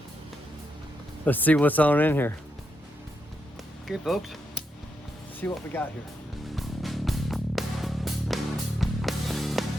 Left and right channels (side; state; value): both; normal; correlation 0.83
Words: Let's see what's on in here. Okay, folks. Let's see what we got here.